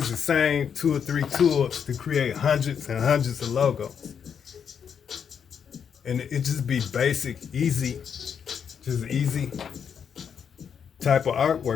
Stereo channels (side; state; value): right; quieter; 7.4 dB